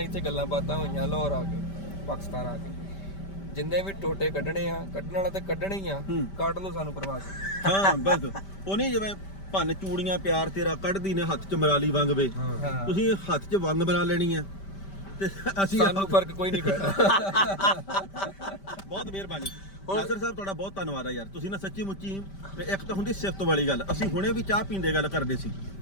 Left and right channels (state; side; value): late; right; 5.1 ms